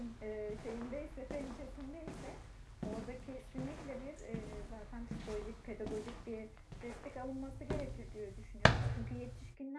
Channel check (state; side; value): identical; both; correlation 1.00